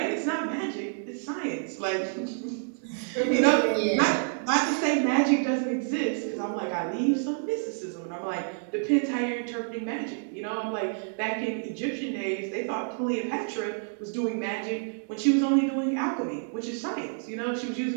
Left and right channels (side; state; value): left; silent; digital silence